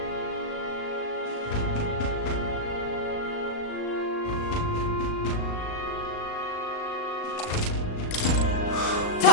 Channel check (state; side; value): late; right; 38 ms